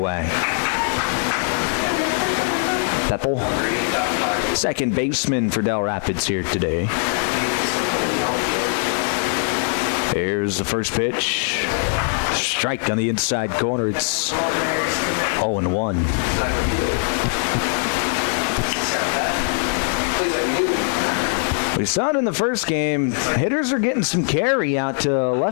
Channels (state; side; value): silent; right; 65 dB below the other